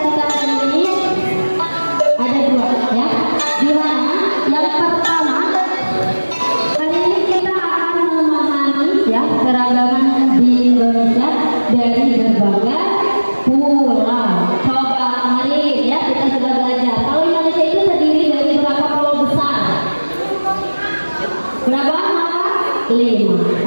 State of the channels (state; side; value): inverted; both; correlation -1.00